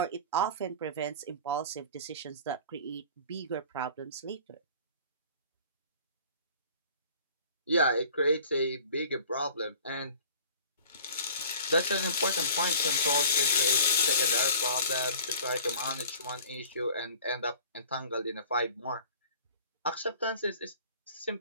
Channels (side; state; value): both; inverted; correlation -0.45